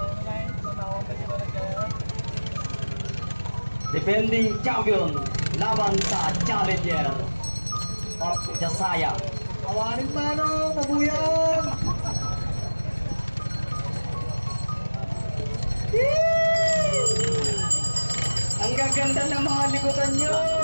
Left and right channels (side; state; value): both; inverted; correlation -1.00